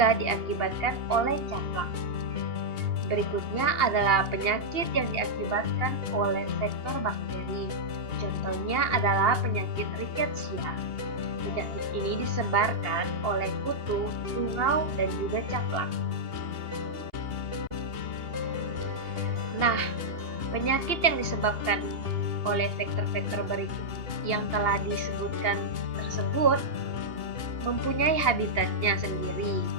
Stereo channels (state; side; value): late; left; 2.8 ms